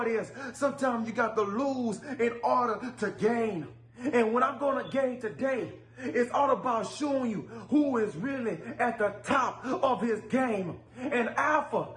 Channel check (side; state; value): both; identical; correlation 1.00